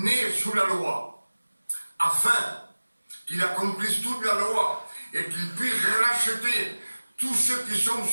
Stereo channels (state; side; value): inverted; both; correlation -1.00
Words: sous la loi, afin qu'il accomplisse toute la loi et qu'il puisse racheter tous ceux qui sont